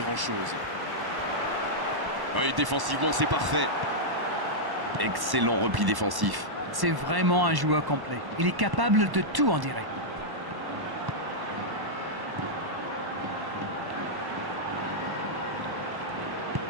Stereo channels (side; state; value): left; late; 1.1 ms